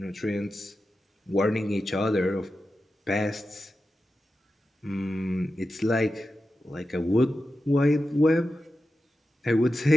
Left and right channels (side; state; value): both; normal; correlation 0.92